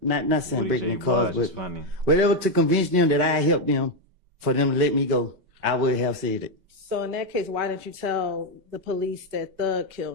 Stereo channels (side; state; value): left; late; 5.2 ms